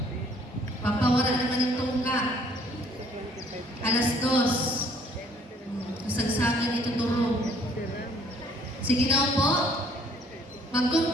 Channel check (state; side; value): normal; both; correlation 0.60